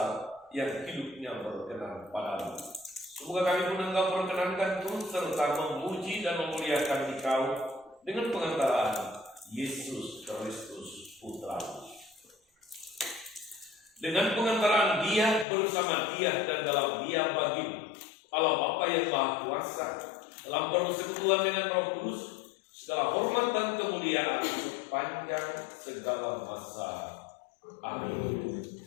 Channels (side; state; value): right; drops out; at 15.5 s